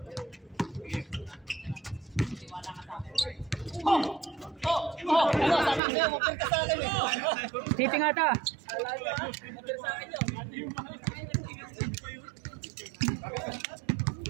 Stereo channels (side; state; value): left; drops out; at 5.8 s